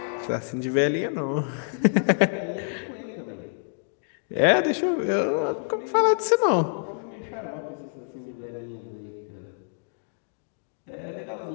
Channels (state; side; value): silent; right; digital silence